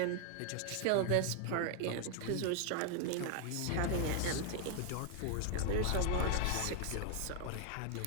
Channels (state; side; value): different; both; correlation 0.00